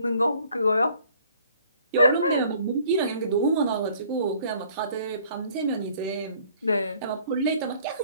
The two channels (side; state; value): both; inverted; correlation -0.57